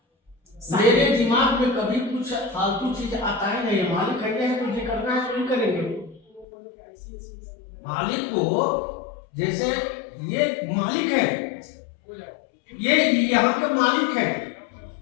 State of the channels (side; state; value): right; drops out; at 6.5 s